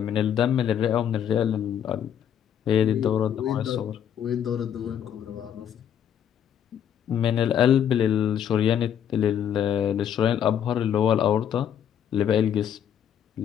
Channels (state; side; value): quieter; right; 9.2 dB